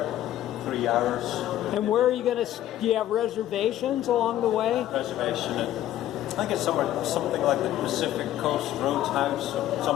3 hours. And where are you going to? Do you have reservations along the way? Reservation at, I think it's something like the Pacific Coast Roadhouse or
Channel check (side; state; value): right; quieter; 13.0 dB